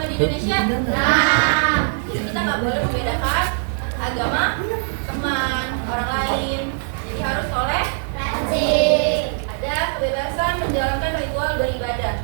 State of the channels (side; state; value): left; silent; digital silence